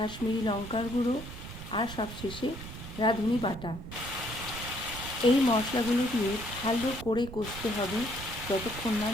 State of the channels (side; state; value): right; noise; rumble, 11 dB below the sound